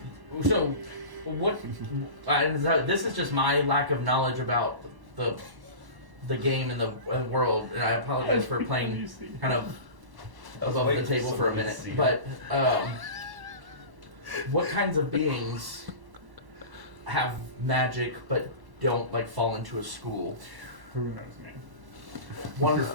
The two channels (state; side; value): late; left; 1.1 ms